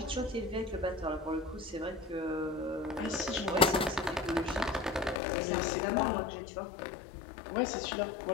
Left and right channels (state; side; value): drops out; right; at 5.2 s